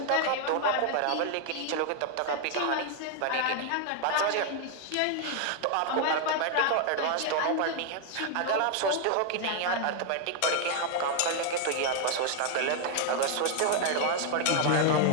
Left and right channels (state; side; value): different; both; correlation 0.00